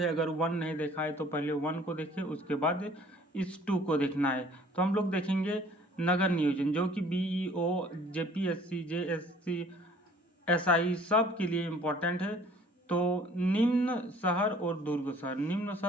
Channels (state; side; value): normal; both; correlation 0.54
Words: अगर 1 नहीं देखा है तो पहले 1 को देखिए, उसके बाद इस 2 को देखना है। तो हम लोग देखेंगे नगर नियोजन, जो कि बीईओ, जेपीएससी, जेएससी, एसआई सब के लिए इम्पोर्टेंट है। तो निम्न शहर और दुर्ग शहर। निम्न